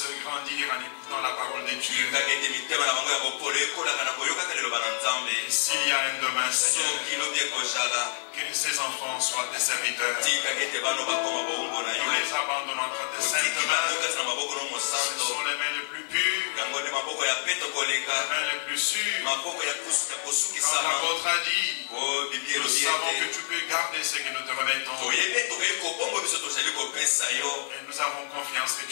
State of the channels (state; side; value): silent; right; digital silence